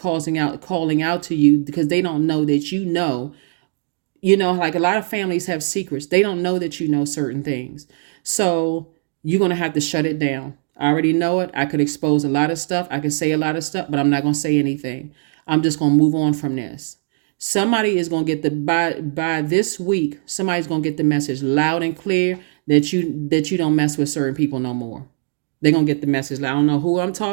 out to you because they don't know that you know. Like a lot of families have secrets. They don't know that you know certain things. So you're going to have to shut it down. I already know it. I could expose a lot of stuff. I could say a lot of stuff, but I'm not going to say anything. I'm just going to move on from this. Somebody is going to get the by this week, somebody's going to get the message loud and clear that you don't mess with certain people no more. They're going to get the message. I don't know who I'm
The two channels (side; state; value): left; silent; digital silence